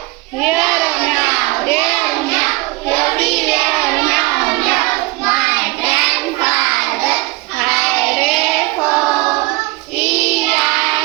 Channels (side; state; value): left; quieter; 22.9 dB